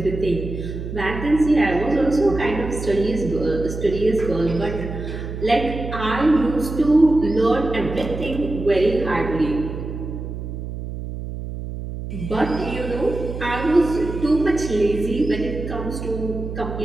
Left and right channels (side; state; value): right; noise; hum, 7 dB below the sound